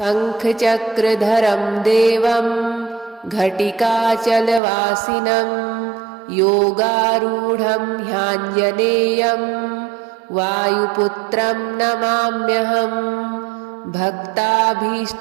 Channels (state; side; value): drops out; left; at 4.6 s